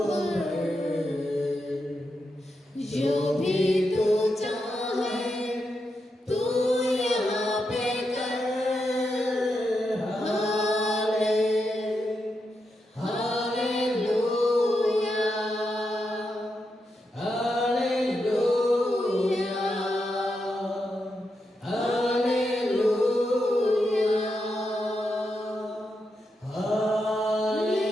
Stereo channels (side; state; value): both; normal; correlation 0.85